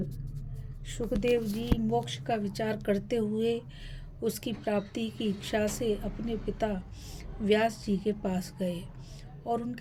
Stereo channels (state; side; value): identical; both; correlation 1.00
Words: सुखदेव जी मोक्ष का विचार करते हुए उसकी प्राप्ति की इच्छा से अपने पिता व्यास जी के पास गए और